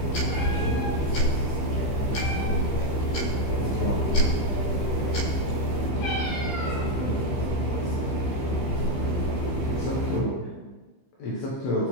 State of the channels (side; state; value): right; late; 15 ms